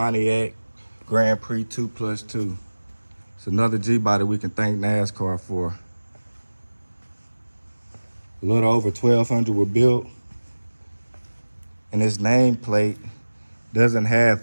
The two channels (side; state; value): both; inverted; correlation -1.00